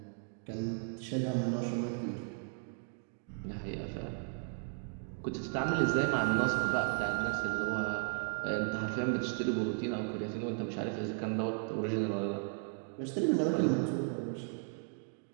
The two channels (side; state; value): left; silent; 54 dB below the other